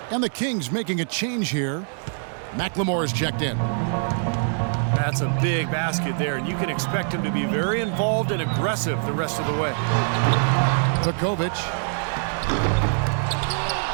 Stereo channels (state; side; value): silent; left; 63 dB below the other